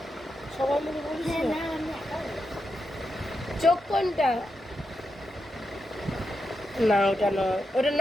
সবাই মিলে বলিস না। চোখ কোনটা? না ওটা নয়, ওটা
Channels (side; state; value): both; normal; correlation 0.87